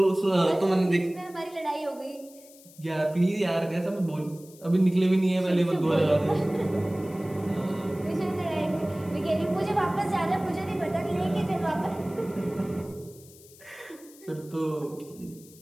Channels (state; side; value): noise; left; hiss, 23 dB below the sound